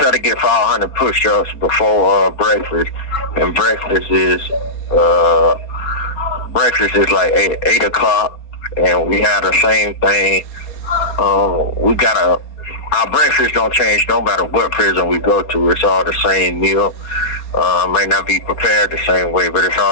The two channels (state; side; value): late; right; 4.3 ms